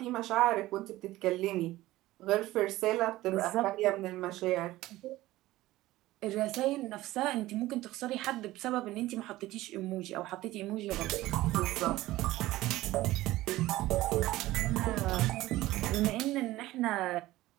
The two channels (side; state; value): left; quieter; 16.9 dB